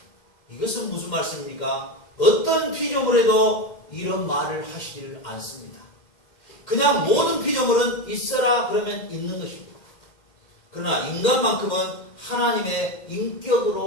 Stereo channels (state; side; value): late; right; 2.1 ms